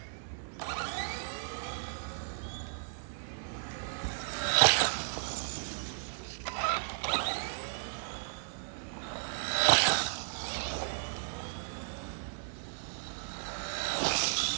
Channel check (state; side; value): silent; left; digital silence